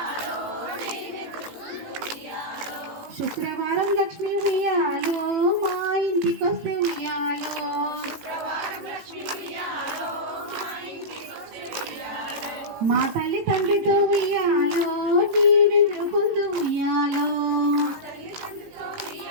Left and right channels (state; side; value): late; left; 18 ms